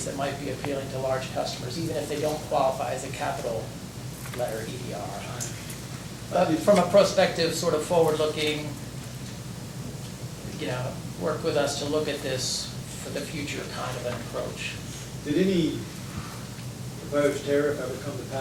that might be appealing to large customers, even if they don't qualify as a capital letter EDR. I understand. But from a prospective, sort of forward-looking, work with us to look at this for the future kind of an approach. Did any proposed tariff ever come to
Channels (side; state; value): both; identical; correlation 1.00